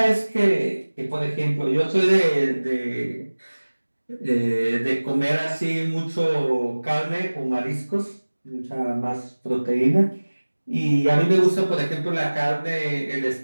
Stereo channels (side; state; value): both; inverted; correlation -1.00